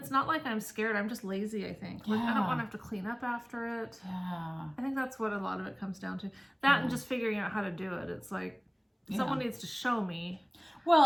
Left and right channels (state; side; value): identical; both; correlation 1.00